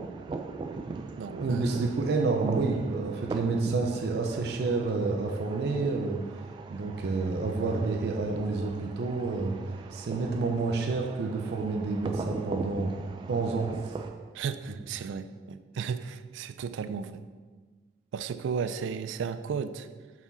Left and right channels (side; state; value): left; quieter; 3.6 dB